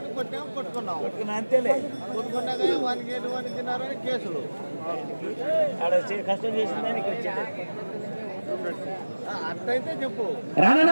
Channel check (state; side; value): inverted; both; correlation -1.00